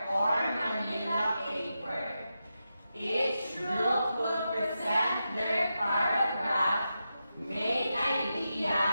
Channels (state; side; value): inverted; both; correlation -0.88